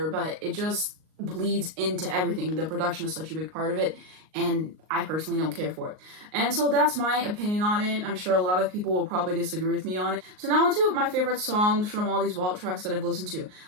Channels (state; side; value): late; left; 38 ms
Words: but it just bleeds into everything. The production is such a big part of it, and I personally don't care for it. And so that's my opinion on it. I'm sure a lot of people will probably disagree with me on it. So now on to my favorite songs from all these vault tracks that I've listened to.